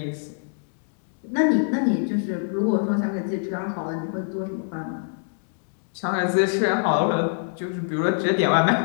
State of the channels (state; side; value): silent; right; digital silence